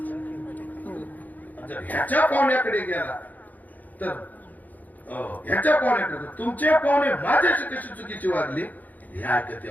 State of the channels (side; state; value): right; late; 0.081 ms